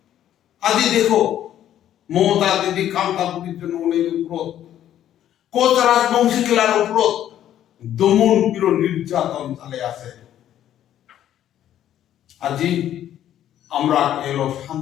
আজি দেখো মমতা দিদি কামতাপুরের জন্য অনেক উপর কোচ রাজবংশী খেলার উপর দমন পির নির্যাতন চালে আছে। আজি আমরা এলো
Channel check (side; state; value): right; quieter; 11.3 dB